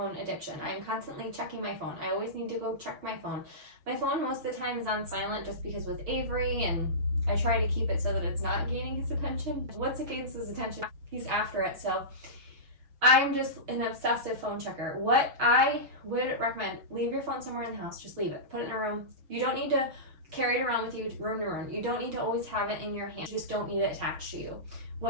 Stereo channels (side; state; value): left; late; 6.3 ms